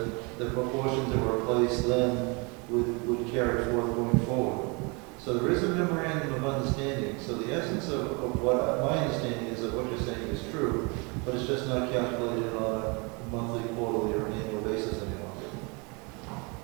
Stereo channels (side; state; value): left; quieter; 30.5 dB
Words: the proportions that were placed then would carry forward going forward. So there is a memorandum of understanding. So the essence of what my understanding is of what you're saying is true, but it's just not calculated on monthly, quarterly, or an annual basis any longer.